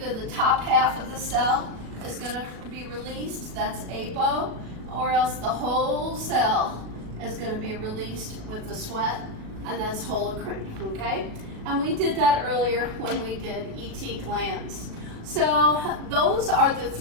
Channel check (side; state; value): left; late; 37 ms